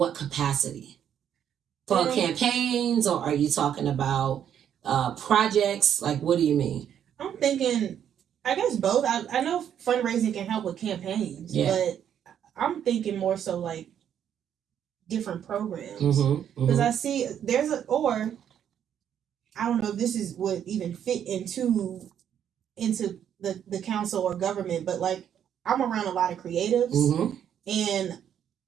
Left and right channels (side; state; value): left; quieter; 9.3 dB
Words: capacity? For campaigns, or are you talking about projects? Like, what do you mean? I'm thinking, I guess both. I know fundraising can help with campaigns, but I'm thinking more so like different programs. Because I see or I don't know if this would even fit into the council or government, but like I'm around a lot of creatives and